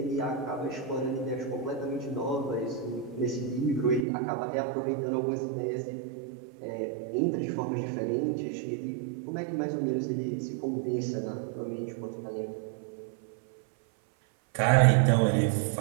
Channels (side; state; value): left; drops out; at 4.0 s